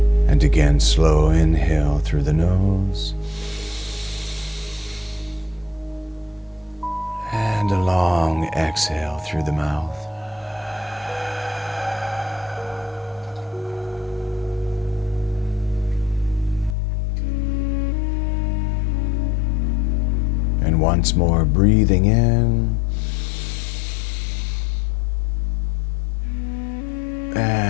And again, slow inhale through the nose. And a long exhale through the mouth. And once more, breathing in.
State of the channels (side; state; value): right; drops out; at 16.8 s